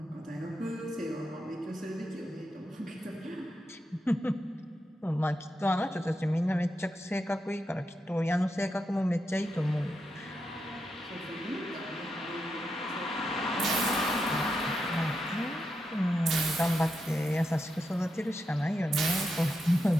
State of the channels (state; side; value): normal; both; correlation 0.85